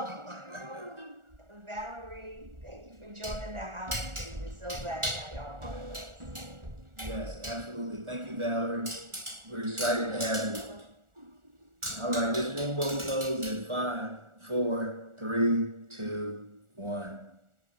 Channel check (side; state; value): left; late; 1.4 ms